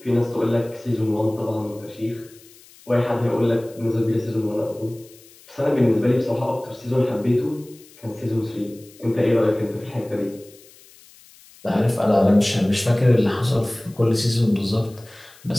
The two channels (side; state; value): left; noise; hiss, 25 dB below the sound